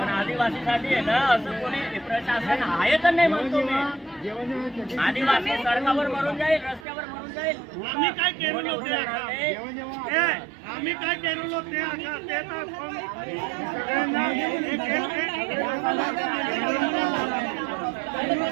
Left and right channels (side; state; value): left; drops out; at 6.9 s